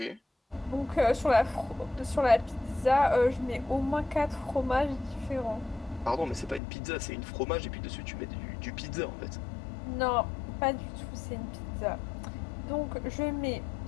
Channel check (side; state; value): right; drops out; at 6.6 s